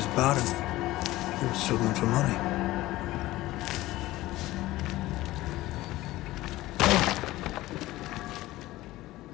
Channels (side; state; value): right; quieter; 17.3 dB